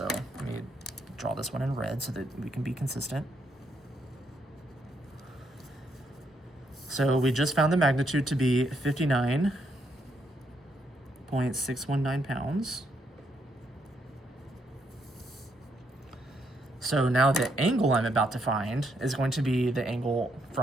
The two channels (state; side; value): normal; both; correlation 0.76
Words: let me draw this one in red so that we can be consistent. So we just found the magnitude to be 59.619 pounds. So now the angle I'm about to find is going to be the angle